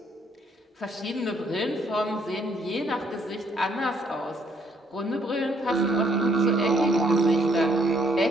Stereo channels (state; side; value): normal; both; correlation 0.68